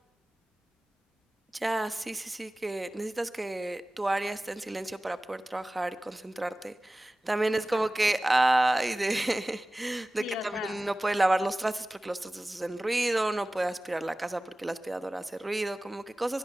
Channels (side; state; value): both; normal; correlation 0.97